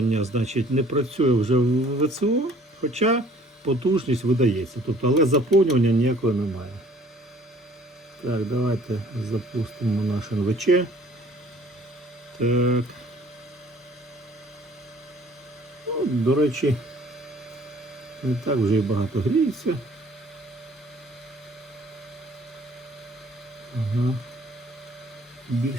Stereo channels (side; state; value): both; normal; correlation 0.55